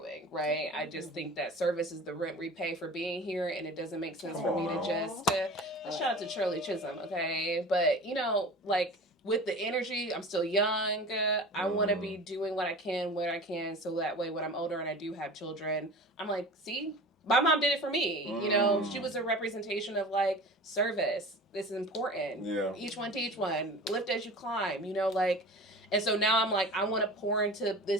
right? I just think that service is the rent we pay for being here, and it doesn't make sense for me to just, shout out to Shirley Chisholm, okay? But, you know, like, with the energy, I'm still young. I want to be doing what I can, where I can, so that way when I'm older and I do have children, I'm like, see? My mom did it for me. You know, she was a representation of like service. This is important. Each one teach one. Lift as you climb. You know, like, and so now I'm like, I want to pour into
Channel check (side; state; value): both; normal; correlation 0.37